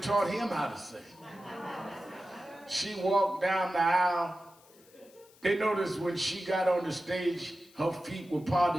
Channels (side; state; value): left; noise; hiss, 27 dB below the sound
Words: taught him how to sing. She walked down the aisle. They noticed when she got on the stage, her feet were